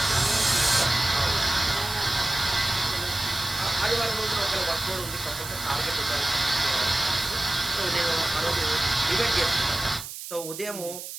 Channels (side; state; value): right; noise; hiss, 10 dB below the sound